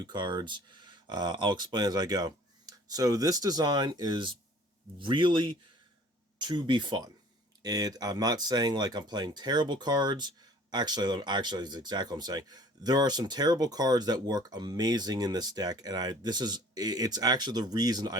cards. I'll explain as I go. So this design is really to be fun. I'm not saying like I'm playing terrible cards. Actually, it's exactly what I'm saying. There are some terrible cards that work amazing in this deck, and it's actually the reason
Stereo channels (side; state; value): both; normal; correlation 0.51